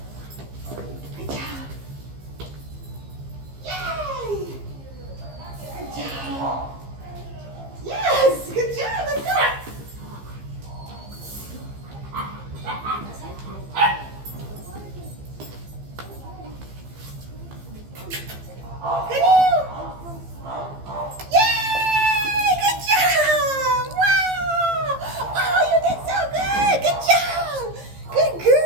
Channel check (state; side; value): late; left; 15 ms